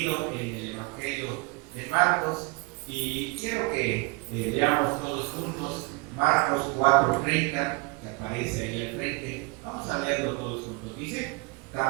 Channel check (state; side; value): quieter; left; 27.2 dB